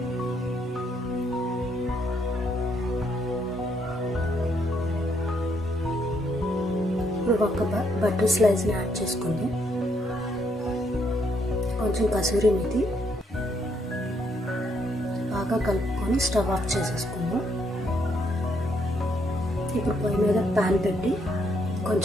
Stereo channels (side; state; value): both; normal; correlation 0.73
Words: ఇప్పుడు ఒక బటర్ స్లైస్ని యాడ్ చేసుకుందాం. కొంచెం కసూరి మేతి బాగా కలుపుకొని స్టవ్ ఆఫ్ చేసేసుకుందాం. ఇప్పుడు పొయ్యి మీద ప్యాన్ పెట్టి